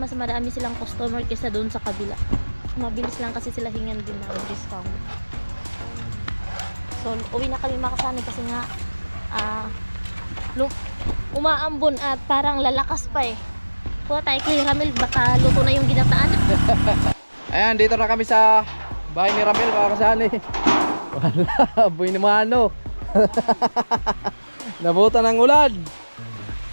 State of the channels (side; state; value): both; inverted; correlation -1.00